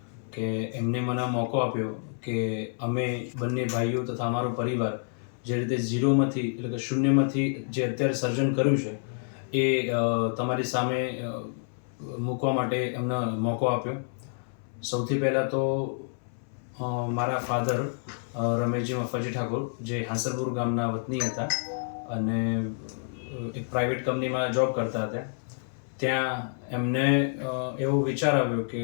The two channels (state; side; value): silent; right; 59 dB below the other